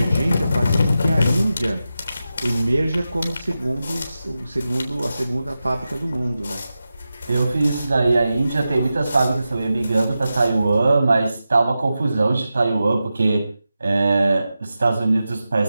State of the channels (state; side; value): inverted; both; correlation -0.92